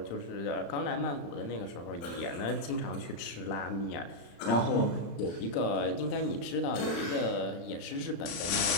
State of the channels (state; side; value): late; right; 35 ms